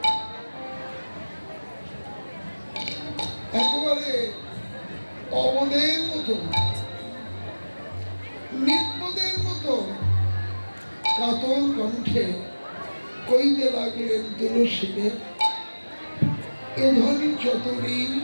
একেবারে অবদের মতো, নির্বোধের মতো কাতর কণ্ঠে কইতে লাগলেন, তুলসীকে, এ ধনী চতরি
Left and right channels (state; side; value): inverted; both; correlation -1.00